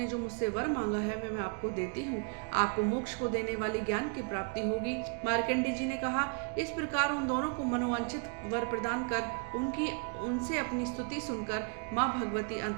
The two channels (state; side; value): quieter; left; 36.9 dB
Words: जो मुझसे वर मांगा है मैं आपको देती हूँ। आपको मोक्ष को देने वाली ज्ञान की प्राप्ति होगी। मार्कंडे जी ने कहा, इस प्रकार उन दोनों को मनोवांछित वर प्रदान कर उनसे अपनी स्तुति सुनकर माँ भगवती